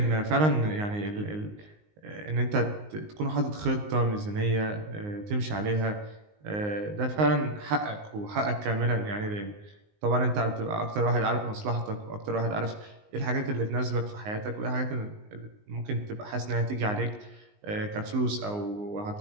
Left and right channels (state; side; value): late; left; 19 ms